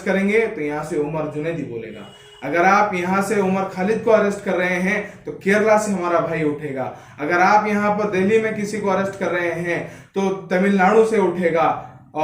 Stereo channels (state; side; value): identical; both; correlation 1.00